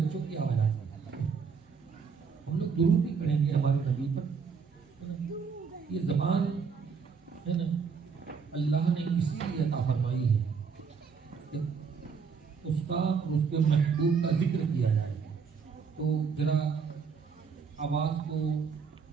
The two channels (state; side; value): quieter; left; 5.8 dB